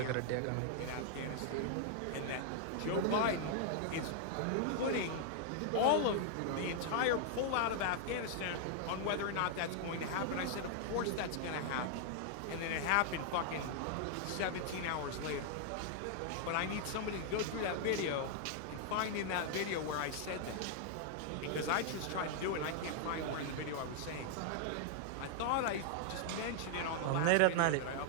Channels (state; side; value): different; both; correlation -0.01